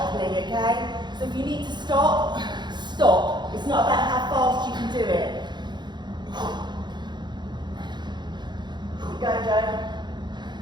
okay? So if you need to stop, stop. It's not about how fast you can do it. Keep going, Joe.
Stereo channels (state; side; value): late; left; 0.21 ms